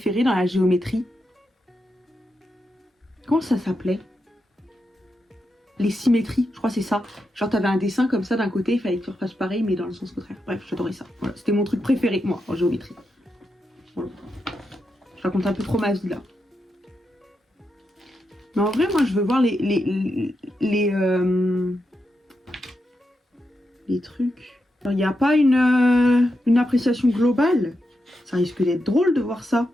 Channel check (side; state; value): both; normal; correlation 0.86